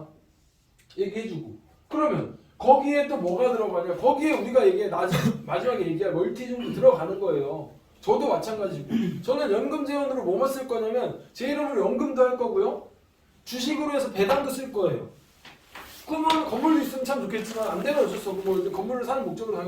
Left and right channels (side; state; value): both; identical; correlation 1.00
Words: 얘기해주고 그러면 거기에 또 뭐가 들어가냐 거기에 우리가 마지막에 얘기할 멀티중도 들어가는 거예요. 저도 마찬가지고 저는 연금재원으로 뭐만 쓸 거냐면 제 이름으로 연금도 할 거고요. 주식으로 해서 배당도 쓸 거예요. 그러면 건물도 있으면 참 좋겠지만 안 되면 어쩔 수 없고 뭐 건물을 사는 목적으로